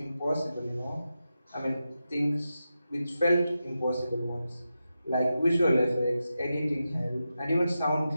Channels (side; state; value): both; inverted; correlation -0.90